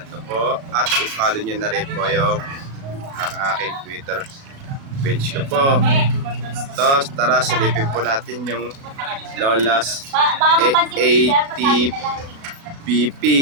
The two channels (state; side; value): late; left; 36 ms